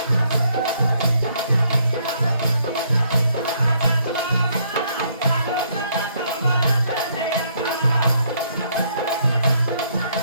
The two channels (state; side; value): inverted; both; correlation -0.69